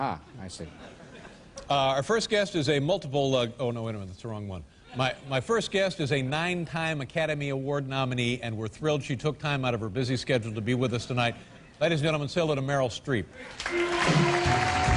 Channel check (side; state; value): both; identical; correlation 1.00